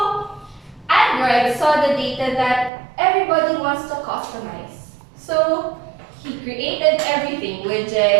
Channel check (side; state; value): left; drops out; at 2.7 s